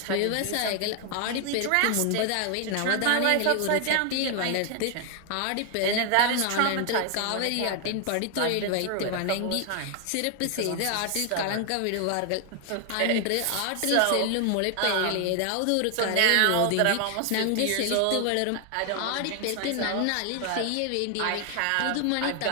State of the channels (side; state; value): both; different; correlation 0.00